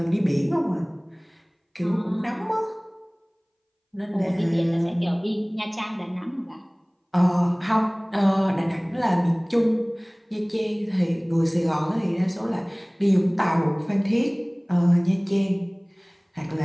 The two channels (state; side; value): identical; both; correlation 1.00